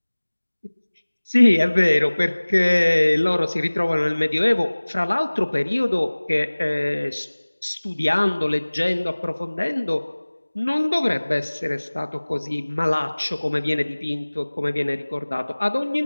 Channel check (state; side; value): inverted; both; correlation -1.00